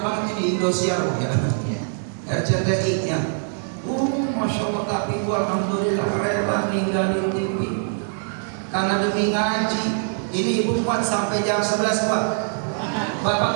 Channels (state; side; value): silent; left; digital silence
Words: banget ini, Indosiar ya, RCTI nya. Masya Allah, tapi gua alhamdulillah rela ninggalin TV karena demi ngaji. Ini ibu kuat sampai jam 11 kuat.